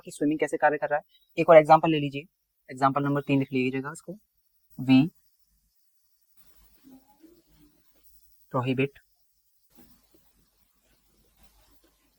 स्विमिंग कैसे कार्य कर रहा है। एक और एग्जांपल ले लीजिए, एग्जांपल नंबर 3 लिख लीजिएगा इसको। We prohibit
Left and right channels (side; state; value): both; identical; correlation 1.00